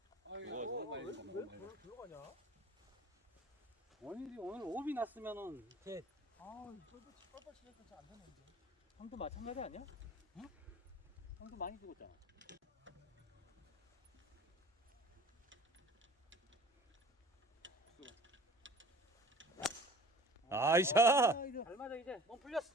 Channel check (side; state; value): both; normal; correlation 0.45